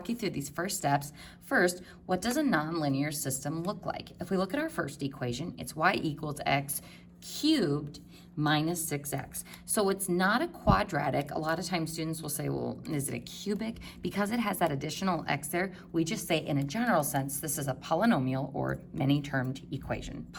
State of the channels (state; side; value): identical; both; correlation 1.00